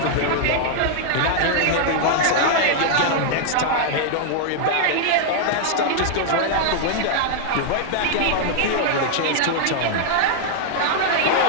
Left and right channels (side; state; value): both; different; correlation 0.00